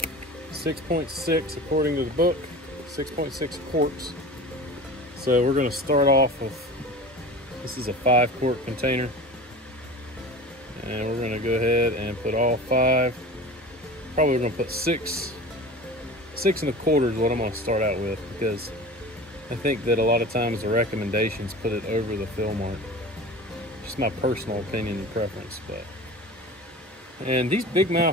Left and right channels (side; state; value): both; normal; correlation 0.36